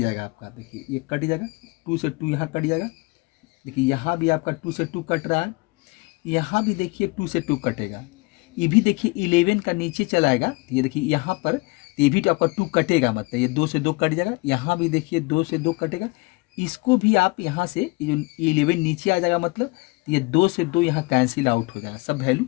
आपका, देखिए ये कट जाएगा, 2 से 2 यहाँ कट जाएगा, देखिए यहाँ भी आपका 2 से 2 कट रहा है, यहाँ भी देखिए 2 से 2 कटेगा, ये भी देखिए 11 का नीचे चलाएगा, तो ये देखिए यहाँ पर ये भी तो आपका 2 कटेगा, मतलब ये 2 से 2 कट जाएगा, यहाँ भी देखिए 2 से 2 कटेगा, इसको भी आप यहाँ से ये जो 11 नीचे आ जाएगा, मतलब ये 2 से 2 यहाँ कैंसिल आउट हो जाएगा, सब वैल्यू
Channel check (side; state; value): right; quieter; 25.2 dB